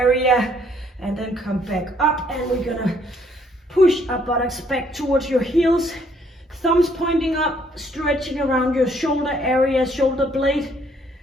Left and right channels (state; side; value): normal; both; correlation 0.66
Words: and then come back up, and we're gonna push our buttocks back towards your heels, thumbs pointing up, stretching around your shoulder area, shoulder blade,